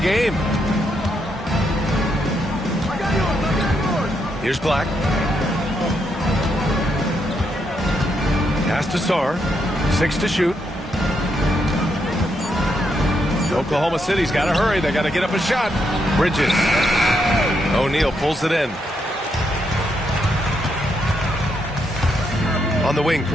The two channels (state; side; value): normal; both; correlation 0.79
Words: game. Here's Black. Pass to Sarr. 6 to shoot. Oklahoma City's got to hurry. They got to get up a shot. Bridges. O'Neal pulls it in. On the wing,